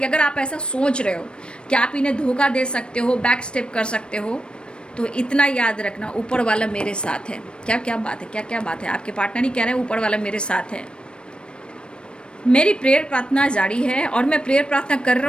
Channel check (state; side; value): late; right; 0.055 ms